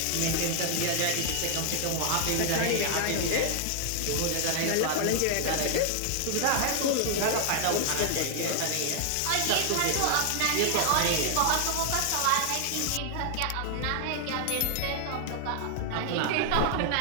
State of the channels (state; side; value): different; both; correlation 0.00